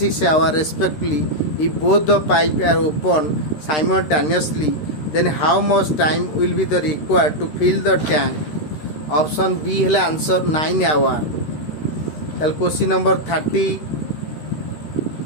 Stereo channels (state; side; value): late; right; 13 ms